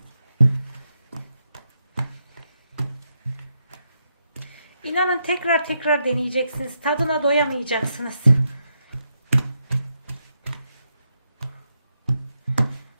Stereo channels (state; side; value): inverted; both; correlation -0.83